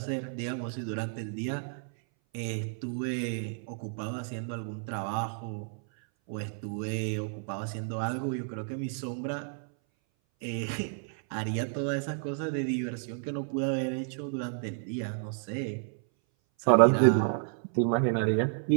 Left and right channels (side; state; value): left; silent; 57 dB below the other